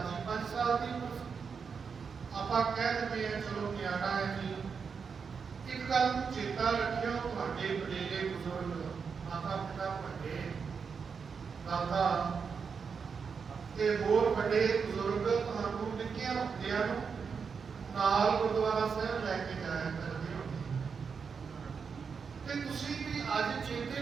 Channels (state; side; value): quieter; left; 5.9 dB